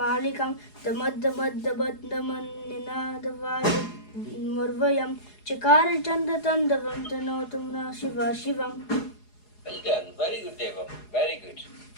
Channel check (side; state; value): right; late; 4.8 ms